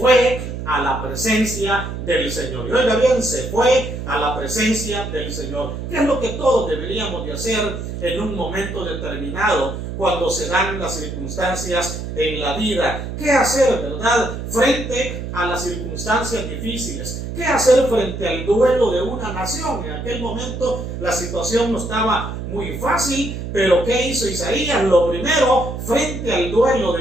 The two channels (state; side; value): noise; right; hum, 6 dB below the sound